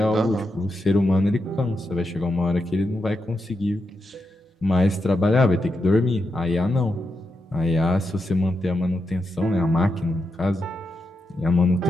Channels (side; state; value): both; normal; correlation 0.85